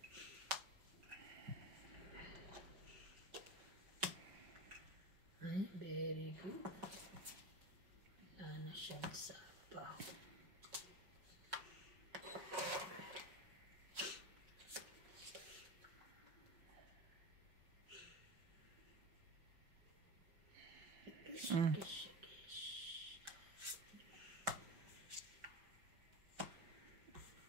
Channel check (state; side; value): late; left; 5.4 ms